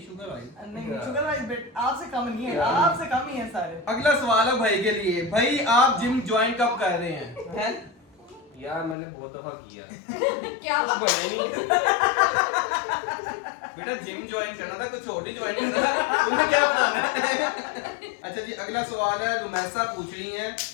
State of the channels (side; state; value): right; drops out; at 9.0 s